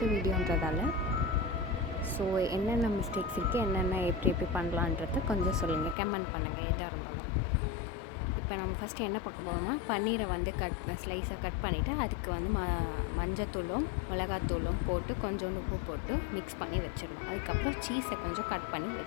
வீடியோன்றதால ஸோ என்னென்ன மிஸ்டேக்ஸ் இருக்குது, என்னென்ன எப்படி பண்ணலான்றத கொஞ்சம் சொல்லுங்கள், கமெண்ட் பண்ணுங்கள் எதாக இருந்தாலும். இப்போ நம்ம ஃபஸ்ட்டு என்ன பார்க்க போகிறோம்னா, பன்னீரை வந்து ஸ்லைஸாக கட் பண்ணிவிட்டு அதுக்கு வந்து மஞ்சத்தூளும் மிளகாத்தூளும் போட்டு கொஞ்சோண்டு உப்பு போட்டு மிக்ஸ் பண்ணி வச்சிடணும். அதுக்கப்புறம் சீஸை கொஞ்சம் கட் பண்ணி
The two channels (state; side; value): drops out; right; at 6.0 s